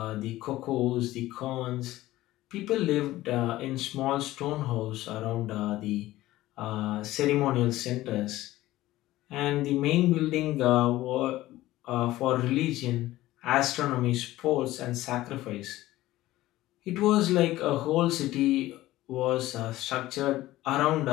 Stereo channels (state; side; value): quieter; right; 16.3 dB